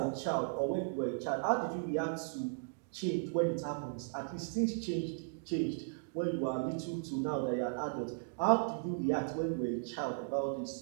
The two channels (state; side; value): silent; left; digital silence